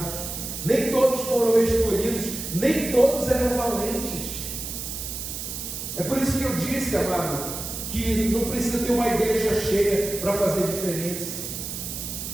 nem todos foram escolhidos, nem todos eram valentes. É por isso que eu disse, amado, que não precisa ter uma igreja cheia para fazer diferença.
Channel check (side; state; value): right; noise; hiss, 6 dB below the sound